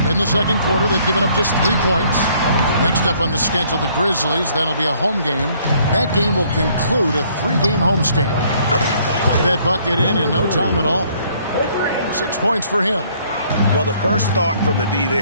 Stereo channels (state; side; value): inverted; both; correlation -0.63